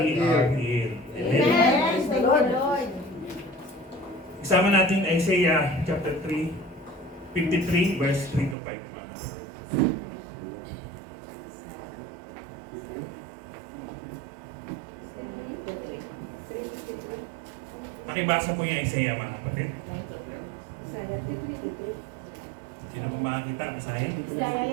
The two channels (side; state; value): left; drops out; at 8.6 s